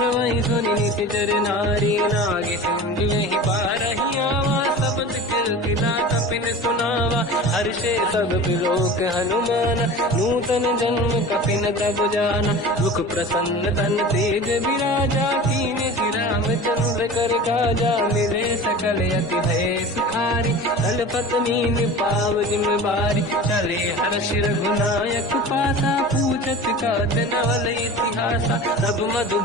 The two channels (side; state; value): both; normal; correlation 0.36